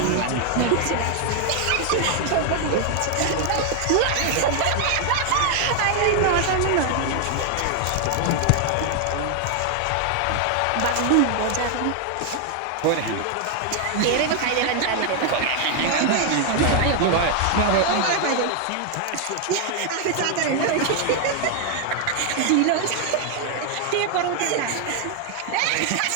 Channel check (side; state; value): both; different; correlation 0.00